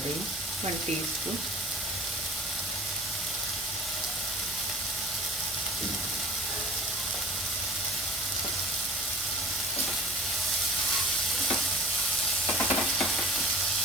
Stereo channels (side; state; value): both; normal; correlation 0.49